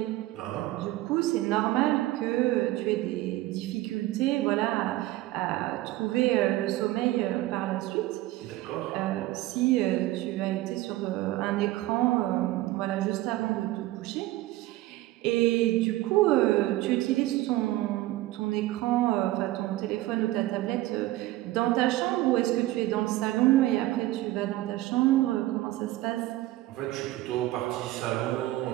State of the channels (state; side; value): quieter; left; 16.9 dB